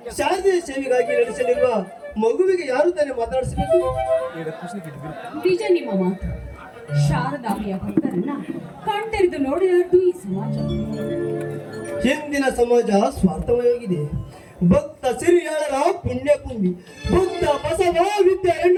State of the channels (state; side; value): identical; both; correlation 1.00